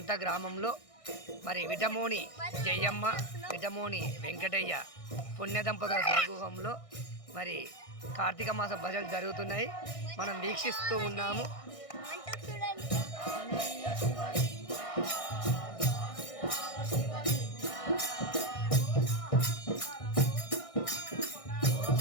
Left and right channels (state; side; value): late; right; 1.6 ms